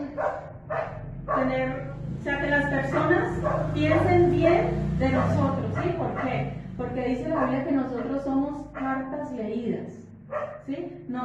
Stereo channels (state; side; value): identical; both; correlation 1.00